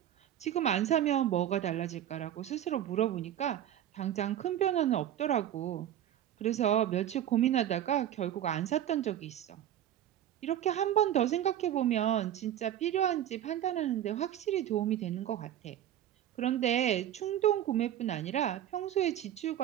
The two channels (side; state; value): left; quieter; 11.4 dB